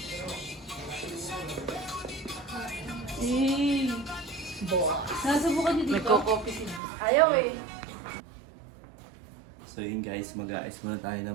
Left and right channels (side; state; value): left; drops out; at 6.8 s